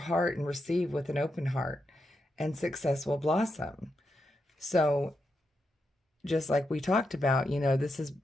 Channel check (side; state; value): both; normal; correlation 0.85